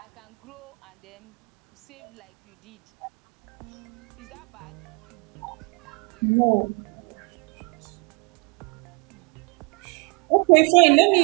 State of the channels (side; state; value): left; quieter; 30.0 dB